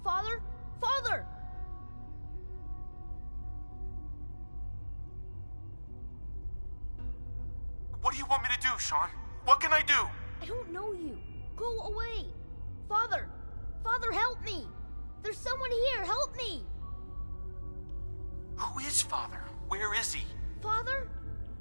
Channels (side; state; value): both; inverted; correlation -1.00